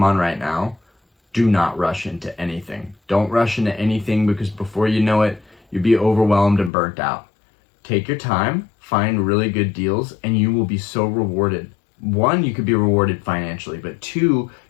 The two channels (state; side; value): drops out; right; at 6.7 s